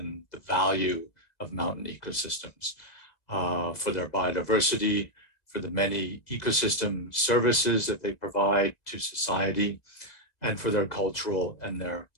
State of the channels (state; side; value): late; right; 2.0 ms